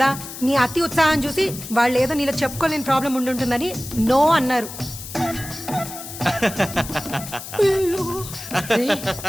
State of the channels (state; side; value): noise; left; hiss, 11 dB below the sound